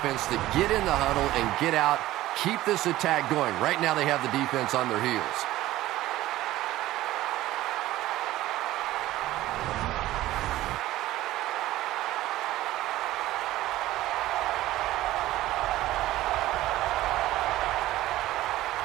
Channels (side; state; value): left; quieter; 15.7 dB